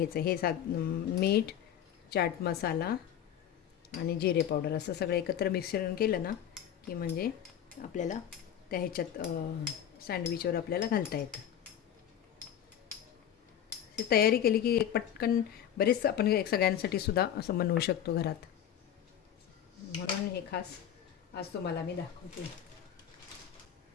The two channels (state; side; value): quieter; right; 9.9 dB